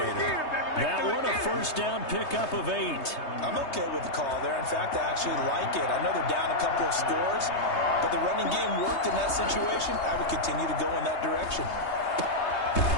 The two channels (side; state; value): right; late; 3.2 ms